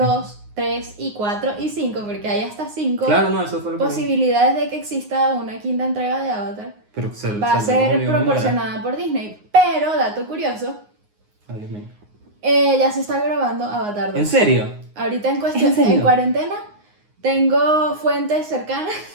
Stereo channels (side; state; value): left; late; 9.6 ms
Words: 3 y 4 y 5, porque hay hasta 5 Claro, no, eso fue lo que... posibilidades de que exista una quinta entrega de Avatar. Pero Va a ser proporcionada por Disney. Pero, dato curioso, Ay, Dios mío. Ya se está grabando Avatar 2. ¿En serio? Ahorita en ¿En serio? en cuarentena, tengo fuentes cercanas